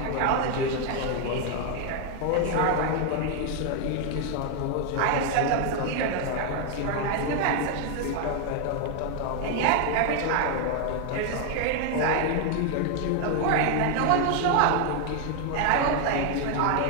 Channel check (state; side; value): different; both; correlation 0.00